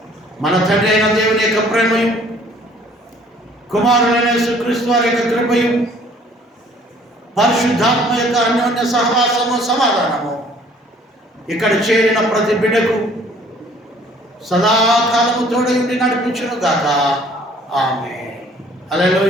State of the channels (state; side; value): normal; both; correlation 0.57